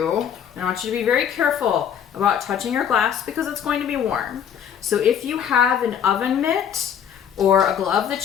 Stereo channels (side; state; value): right; quieter; 8.6 dB